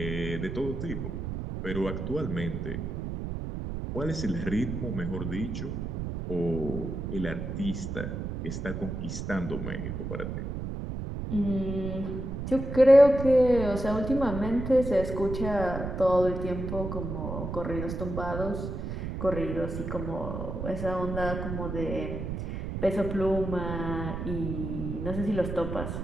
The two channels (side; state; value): right; noise; rumble, 5 dB below the sound